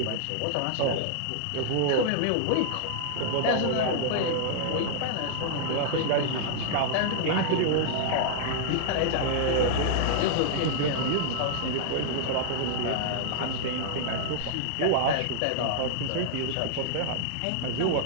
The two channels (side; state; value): both; different; correlation -0.01